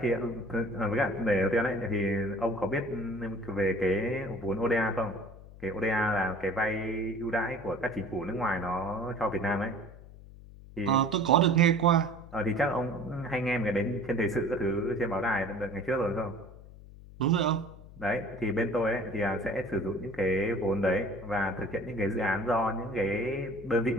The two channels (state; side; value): noise; left; hum, 18 dB below the sound